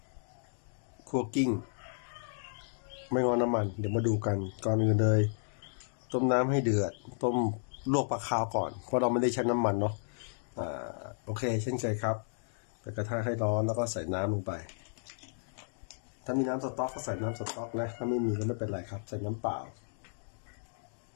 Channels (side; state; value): right; silent; digital silence